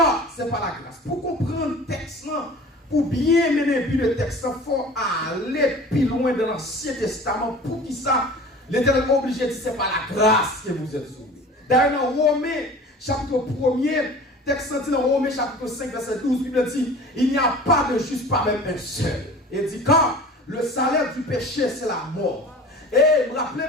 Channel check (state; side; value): normal; both; correlation 0.41